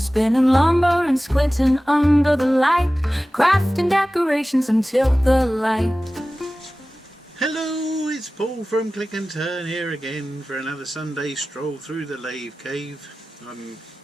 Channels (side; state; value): both; normal; correlation 0.96